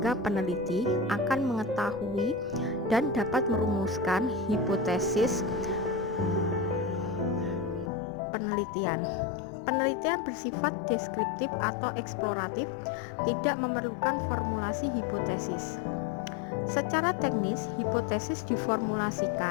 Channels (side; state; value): right; drops out; at 7.9 s